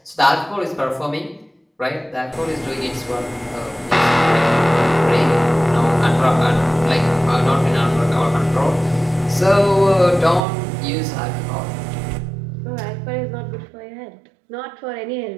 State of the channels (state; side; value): drops out; left; at 10.5 s